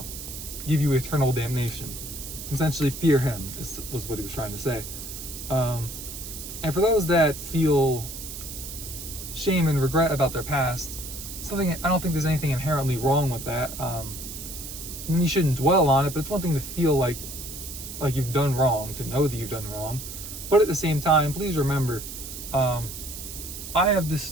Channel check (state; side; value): noise; right; hiss, 10 dB below the sound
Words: give you eternal damnation. Essentially, fear him was what he was trying to say. And for those that feel shame and regret about their past, I don't think there's anything inherently wrong with that. And you shouldn't dwell on it, but it's one thing to feel like you've done wrong, to know that you've done wrong. But at the same time, please remember, I have